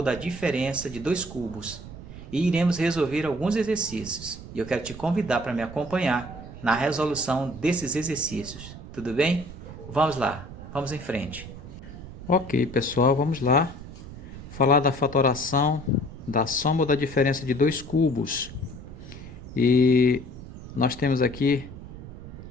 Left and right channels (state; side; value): noise; right; rumble, 13 dB below the sound